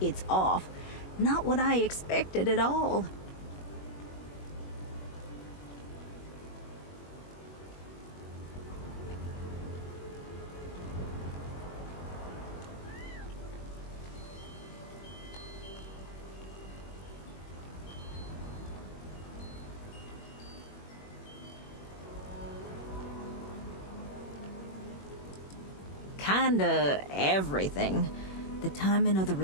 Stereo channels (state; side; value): late; right; 21 ms